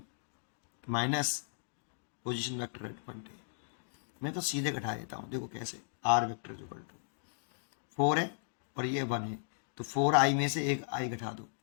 minus position vector at point A. मैं तो सीधे घटा देता हूँ, देखो कैसे। आर वेक्टर इक्वल टू 4 है और ये 1 है, तो 4i में से एक i घटा दो,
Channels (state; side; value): silent; right; digital silence